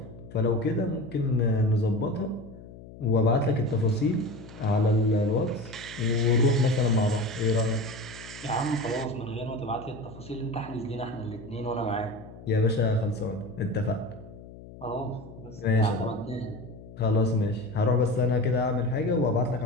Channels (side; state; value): left; noise; hum, 17 dB below the sound